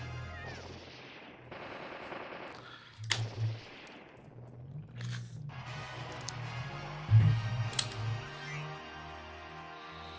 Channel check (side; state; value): both; identical; correlation 1.00